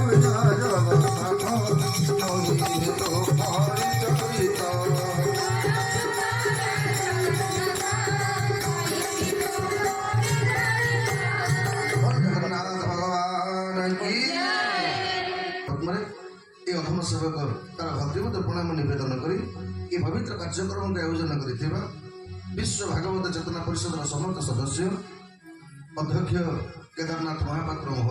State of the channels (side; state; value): both; identical; correlation 1.00